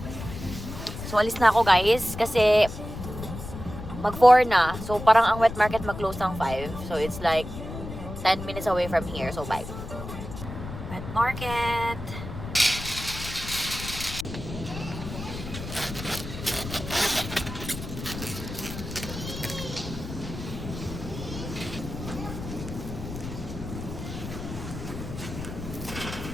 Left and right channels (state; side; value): noise; left; rumble, 9 dB below the sound